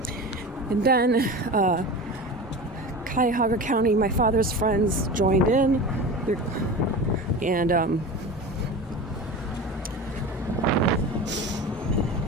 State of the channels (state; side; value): normal; both; correlation 0.30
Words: And then Cuyahoga County, my father's friends joined in, and